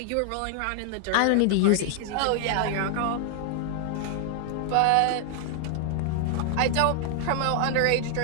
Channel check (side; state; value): both; different; correlation 0.00